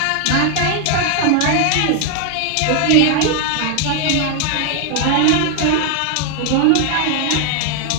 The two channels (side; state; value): both; different; correlation 0.00